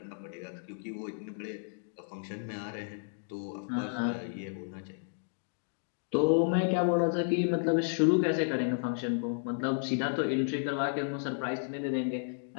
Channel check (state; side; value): silent; right; digital silence